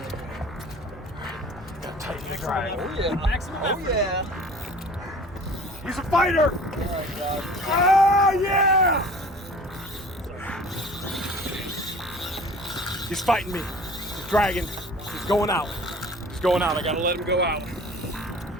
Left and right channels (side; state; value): both; normal; correlation 0.45